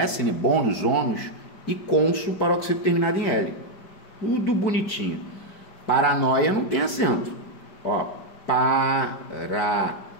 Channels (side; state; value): right; late; 5.0 ms